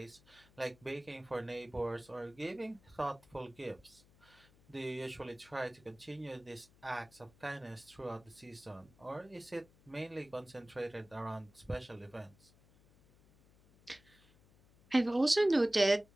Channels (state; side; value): noise; left; hum, 27 dB below the sound